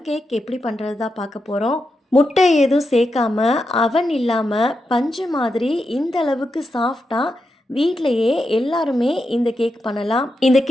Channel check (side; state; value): both; normal; correlation 0.87